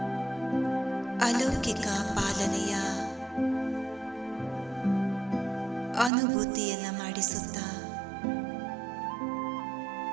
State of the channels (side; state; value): left; drops out; at 6.1 s